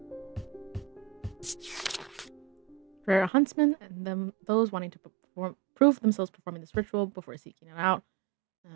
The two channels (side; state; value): left; drops out; at 3.3 s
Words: For a huntsman and those wanting to prove themselves performing this ritual before seeking it out.